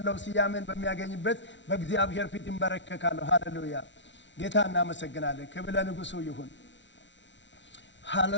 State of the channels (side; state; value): right; late; 0.53 ms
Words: ስያሜን በሚያገኝበት በእግዚአብሔር ፊት እንበረከካለሁ። ሃሌሉያ ጌታ እናመሰግናለን። ክብር ለንጉሱ ይሁን።